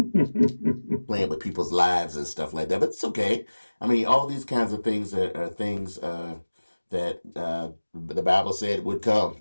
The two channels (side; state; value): both; inverted; correlation -1.00